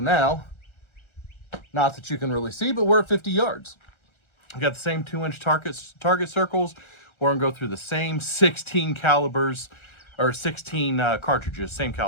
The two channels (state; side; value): late; right; 1.3 ms